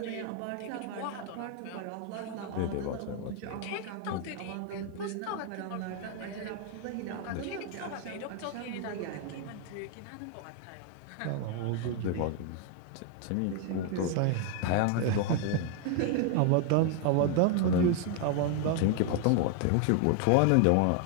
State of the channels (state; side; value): different; both; correlation 0.00